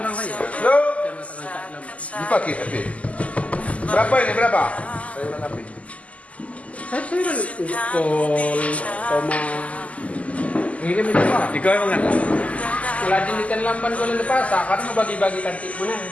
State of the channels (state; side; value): late; right; 0.068 ms